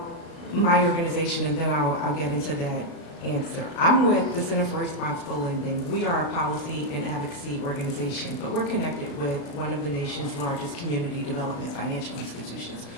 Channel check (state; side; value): late; right; 35 ms